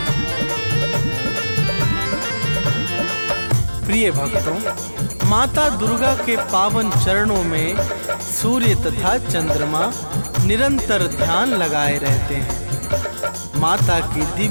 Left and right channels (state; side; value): inverted; both; correlation -1.00